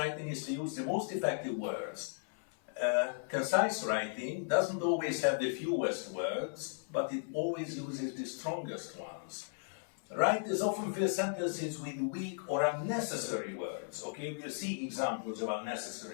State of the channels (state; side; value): silent; right; 54 dB below the other